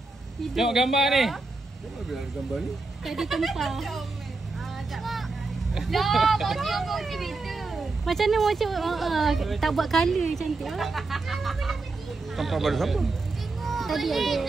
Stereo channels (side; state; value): left; quieter; 3.5 dB